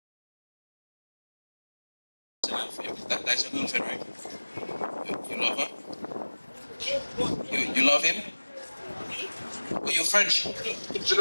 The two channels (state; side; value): inverted; both; correlation -1.00